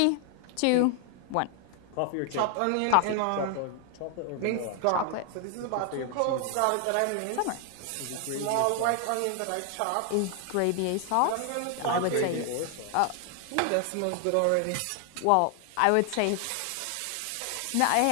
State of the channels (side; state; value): both; different; correlation 0.00